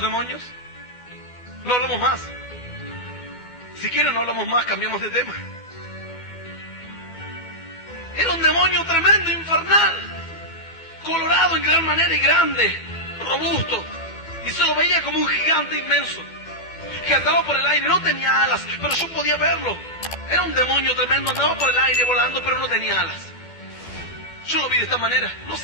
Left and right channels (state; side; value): late; right; 12 ms